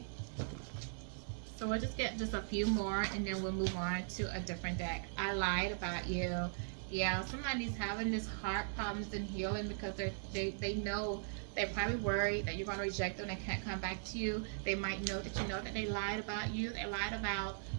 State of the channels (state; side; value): silent; left; digital silence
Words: So we'll just get just a few more and then we'll move on to a different deck. I lied about you. Yeah, somebody's having this heart problems and healing because they know, they're probably worried that you're going to reject them and they can't come back to you. They might know that you know that they lied about you. They lied about